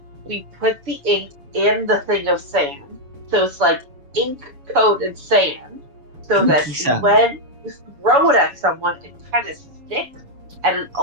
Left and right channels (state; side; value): late; left; 7.1 ms